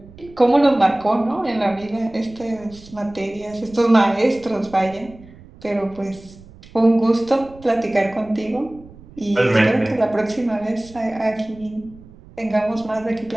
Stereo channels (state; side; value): noise; right; rumble, 22 dB below the sound